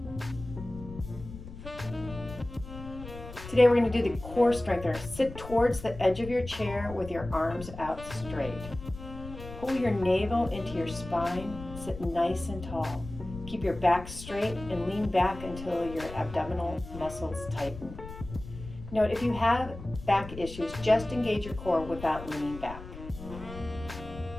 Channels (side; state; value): left; noise; rumble, 13 dB below the sound